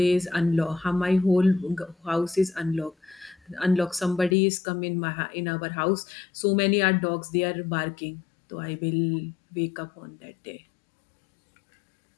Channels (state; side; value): drops out; right; at 4.4 s